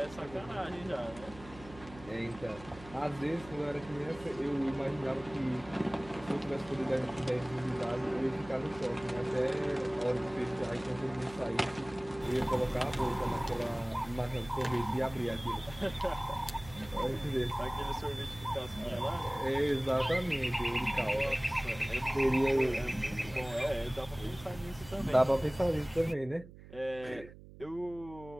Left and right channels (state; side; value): noise; right; hum, 18 dB below the sound